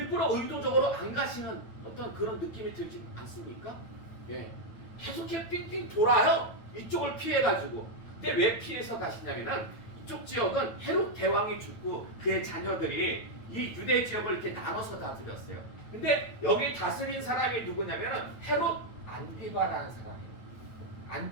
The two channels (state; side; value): late; right; 9.0 ms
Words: 의도적으로 안 가시는 어떤 그런 느낌이 들지 않습니까? 예. 계속 이렇게 삥삥 돌아요. 이쪽을 피해가지고. 근데 왜 피해서 가시냐면은 이쪽 지역은 헤롯 대왕이 죽고 그의 자녀들이 이 유대 지역을 이렇게 나눠서 다스렸어요. 근데 여기 다스린 사람이 누구냐면은 헤롯 안디바라는 사람이에요.